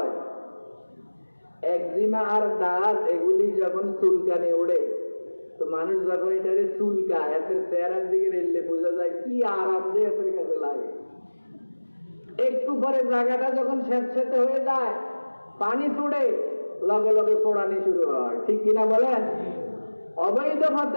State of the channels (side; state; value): both; inverted; correlation -1.00